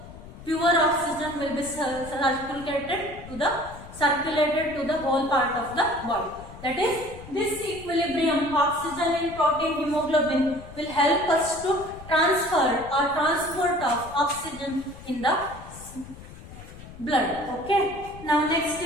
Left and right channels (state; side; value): noise; left; rumble, 16 dB below the sound